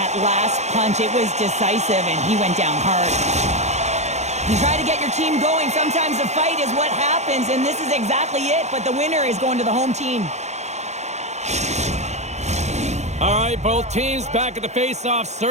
last punch. It was decisive, and he went down hard. You try to get your team going. Sometimes the fight is what happens, and this is exactly it, but the winner is going to the home team. All right, both teams back at the face-off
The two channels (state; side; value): late; left; 0.33 ms